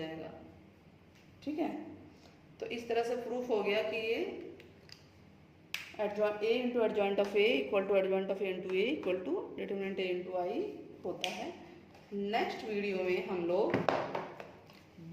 ठीक है, तो इस तरह से प्रूफ हो गया कि ये A into adjoint of A equal to adjoint of A into A equal to determinant A into I होता है। नेक्स्ट वीडियो में हम लोग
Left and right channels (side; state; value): both; identical; correlation 1.00